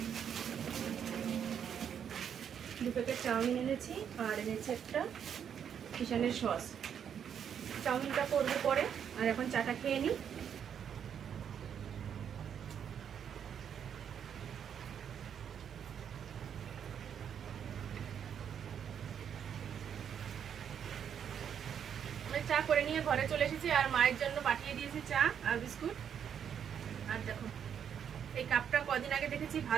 2 প্যাকেট চাউমিন এনেছি, আর এনেছি একটা কিষানের সস। চাউমিনটা করবো পরে, আর এখন চাটা খেয়ে নিই। চা করে নিয়ে ঘরে চলে এসেছি, আর মায়ের জন্য পাঠিয়ে দিয়েছি চা আর বিস্কুট। আর দেখো এই কাপটা কদিন আগে দেখেছি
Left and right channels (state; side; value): quieter; left; 8.3 dB